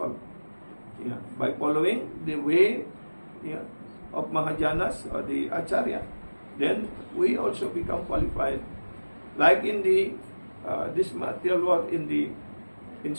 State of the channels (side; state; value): both; inverted; correlation -1.00